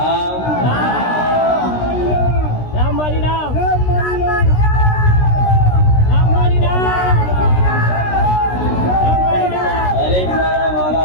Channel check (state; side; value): late; right; 16 ms